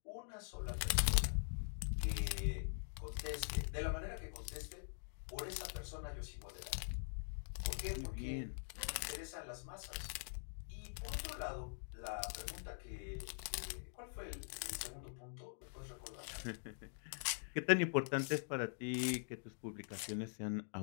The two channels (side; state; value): right; silent; digital silence